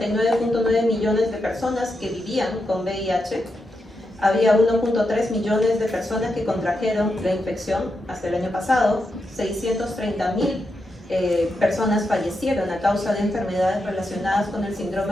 millones de personas que vivían con VIH. Había 1.3 millones de personas que contrajeron la infección hasta el año pasado. 630.000 personas fallecieron a causa de enfermedades relacionadas con el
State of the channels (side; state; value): both; normal; correlation 0.85